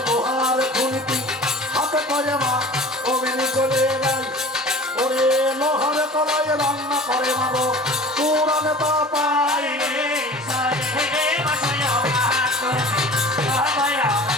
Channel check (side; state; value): both; normal; correlation 0.41